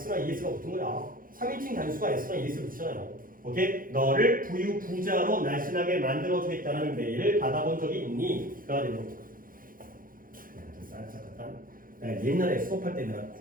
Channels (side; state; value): left; late; 0.41 ms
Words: ES가 붙은 거야. 3인칭 단수가 S나 ES를 붙이잖아요. 오케이? 너를 부자로 날씬하게 만들어주겠다는 메일을 받아본 적이 있니? 가 되는 거죠. 옛날에 수업할 때 내가